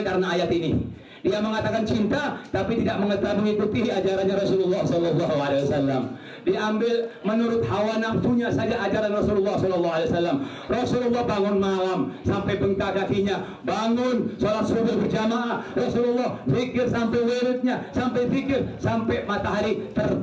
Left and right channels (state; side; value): identical; both; correlation 1.00